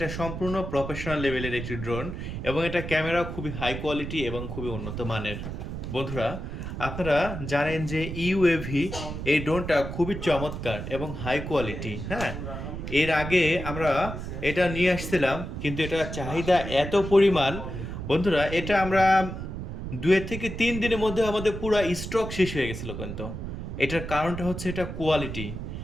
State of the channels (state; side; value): noise; right; rumble, 7 dB below the sound